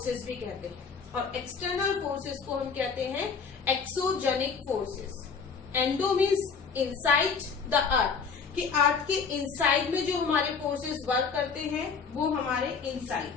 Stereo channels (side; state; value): right; quieter; 5.6 dB